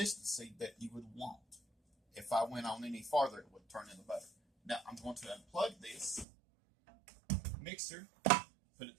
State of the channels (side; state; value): left; drops out; at 6.2 s